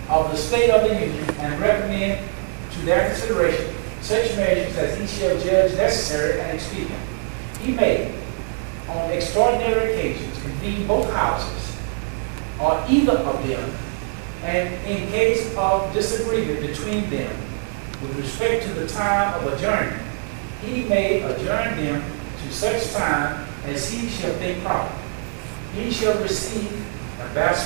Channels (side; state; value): left; silent; 56 dB below the other